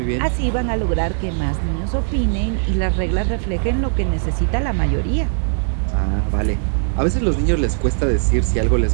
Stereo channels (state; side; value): silent; left; digital silence